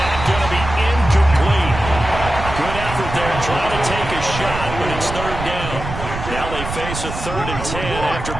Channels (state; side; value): noise; right; rumble, 7 dB below the sound